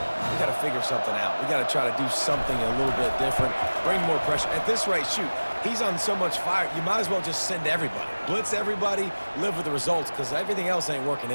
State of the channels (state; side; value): inverted; both; correlation -1.00